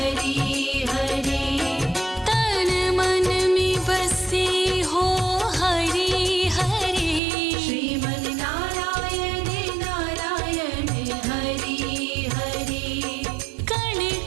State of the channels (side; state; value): left; drops out; at 7.2 s